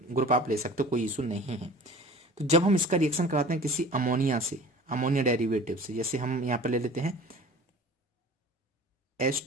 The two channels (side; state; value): both; normal; correlation 0.43